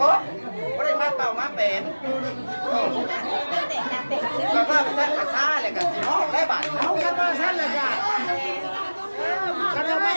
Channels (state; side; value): inverted; both; correlation -1.00